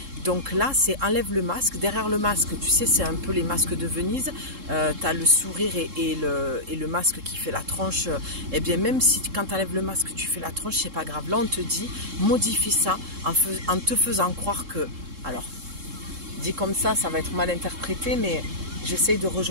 Donc là, c'est enlève le masque. Derrière le masque, tu sais, c'est un peu les masques de Venise. Tu as le sourire et le masque qui fait la tronche. Eh bien, même si quand tu enlèves le masque, tu fais la tronche, c'est pas grave. Là, on te dit, modifie ça en te faisant croire que... Alors, dit comme ça va être mal interprété, mais j'essaye de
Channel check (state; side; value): late; left; 3.7 ms